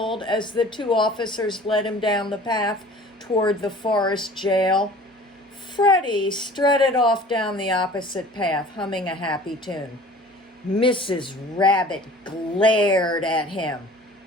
as the 2 officers led him down the path toward the forest jail. Freddie strutted off down the opposite path, humming a happy tune. Mrs. Rabbit glared at him.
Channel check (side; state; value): both; normal; correlation 0.46